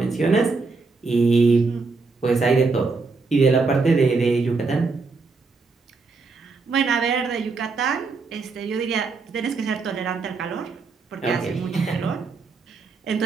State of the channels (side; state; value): left; quieter; 4.2 dB